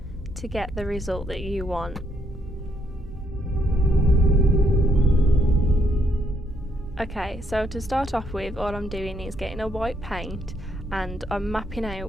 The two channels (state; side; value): normal; both; correlation 0.74